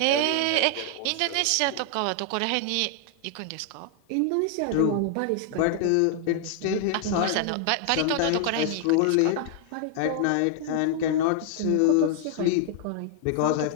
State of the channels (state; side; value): different; both; correlation 0.00